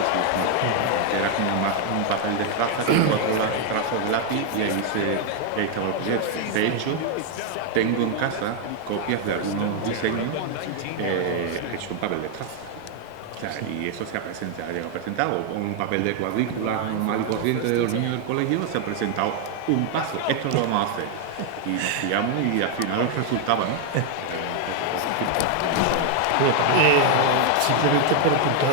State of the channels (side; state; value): both; different; correlation 0.00